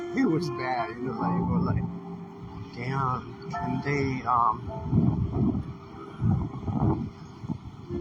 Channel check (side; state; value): both; identical; correlation 1.00